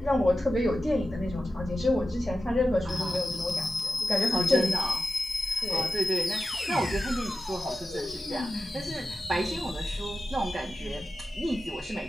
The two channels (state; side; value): normal; both; correlation 0.93